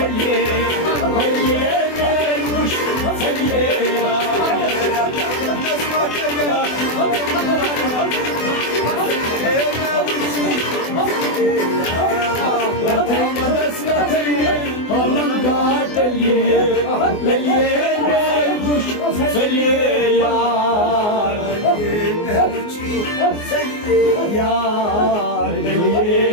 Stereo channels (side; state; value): right; late; 24 ms